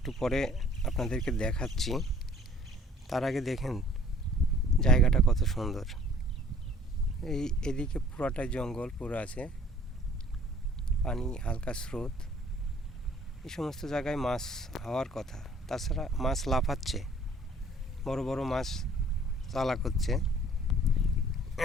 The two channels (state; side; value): normal; both; correlation 0.54